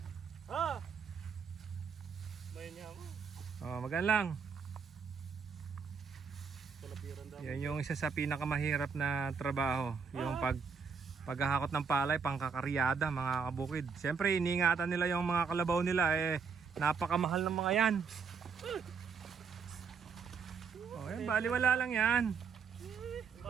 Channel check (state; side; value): quieter; left; 5.9 dB